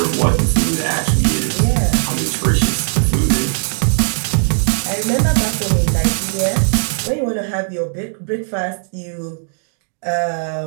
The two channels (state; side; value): silent; left; digital silence